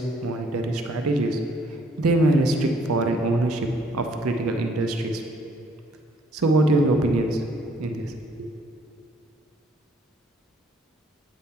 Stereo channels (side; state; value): both; normal; correlation 0.64